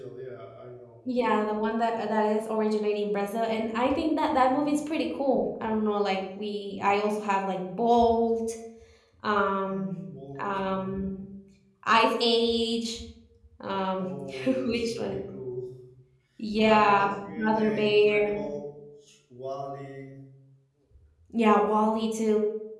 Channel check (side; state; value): both; identical; correlation 1.00